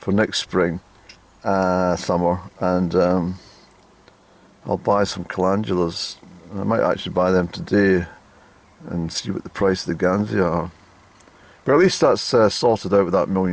for next spring, summer, and I'll buy some calendulas. I might actually buy them today and see what the price of the Gansia are. But at least that's sorted out with that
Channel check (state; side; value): identical; both; correlation 1.00